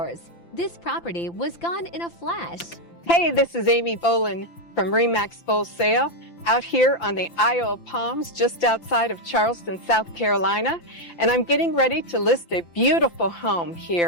this property was gone in a flash. Hey, this is Amy Bolan from Remax Full Sail out here on the Isle of Palms just outside of Charleston, South Carolina. And I'm getting ready to list a beautiful home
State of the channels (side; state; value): right; late; 5.9 ms